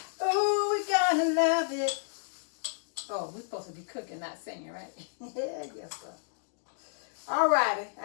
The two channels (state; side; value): silent; right; digital silence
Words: Ooh, we're gonna love it. Oh, we're supposed to be cooking, not singing, right? Yeah, yes, sir. All righty,